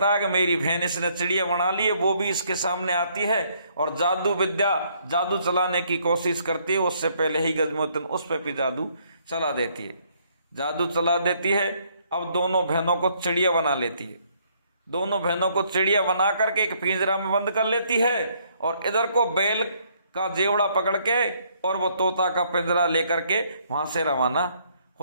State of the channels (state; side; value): inverted; both; correlation -0.68